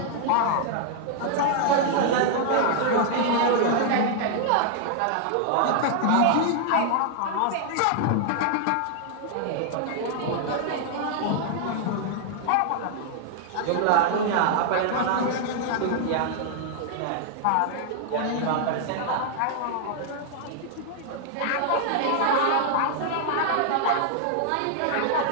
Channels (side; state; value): both; different; correlation 0.00